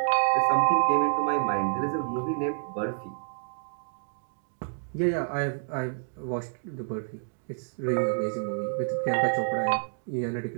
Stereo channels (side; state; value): left; silent; digital silence